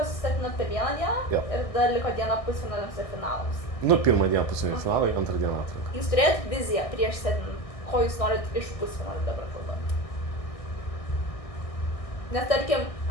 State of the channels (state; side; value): late; right; 1.6 ms